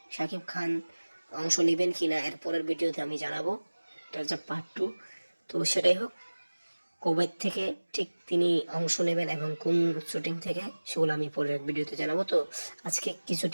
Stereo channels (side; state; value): both; inverted; correlation -1.00